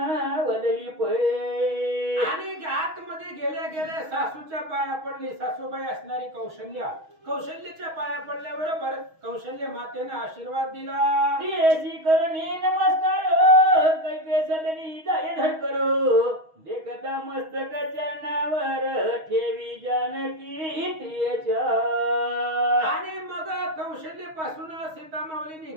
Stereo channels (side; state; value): left; late; 6.3 ms